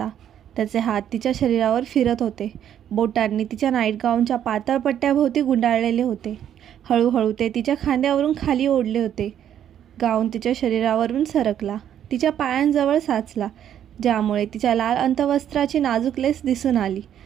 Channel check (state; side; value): quieter; left; 10.0 dB